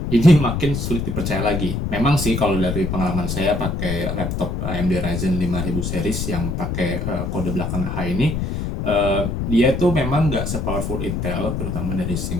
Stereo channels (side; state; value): left; noise; rumble, 2 dB below the sound